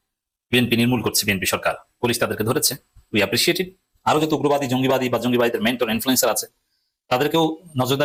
বিএনপি নির্মূল করছে, বিএনপি সরকার, পুলিশ তাদেরকে ধরেছে, উই অ্যাপ্রিসিয়েট ইট। আরো যত উগ্রবাদী, জঙ্গিবাদী বা জঙ্গিবাদীদের মেন্টর ইনফ্লুয়েন্সার আছে তাদেরকেও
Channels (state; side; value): identical; both; correlation 1.00